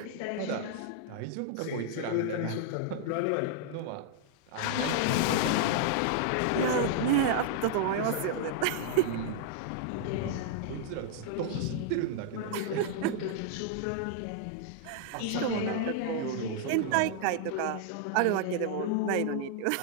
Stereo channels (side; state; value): both; different; correlation -0.01